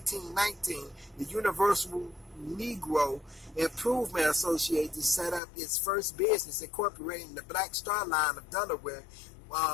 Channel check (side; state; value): right; drops out; at 5.4 s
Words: the Universal Negro Improvement Association set up its first business, incorporating the Black Star Line of Delaware,